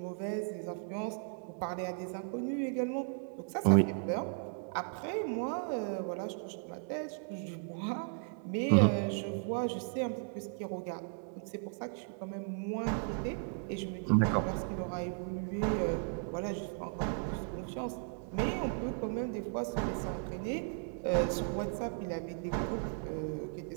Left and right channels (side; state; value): left; silent; 54 dB below the other